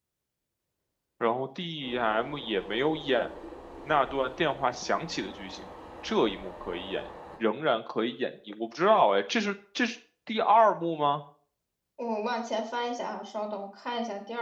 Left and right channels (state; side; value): identical; both; correlation 1.00